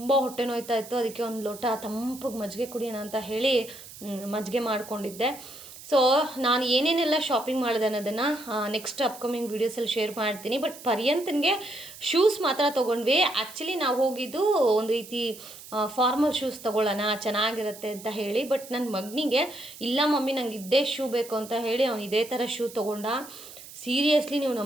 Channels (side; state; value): right; noise; hiss, 16 dB below the sound